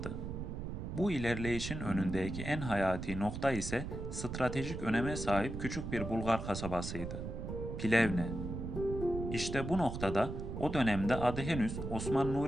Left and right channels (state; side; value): noise; right; rumble, 6 dB below the sound